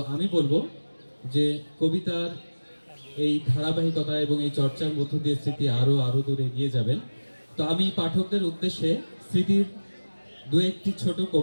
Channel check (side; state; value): both; inverted; correlation -1.00